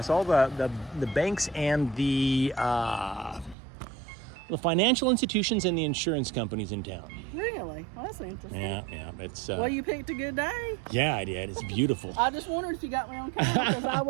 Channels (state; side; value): drops out; left; at 3.6 s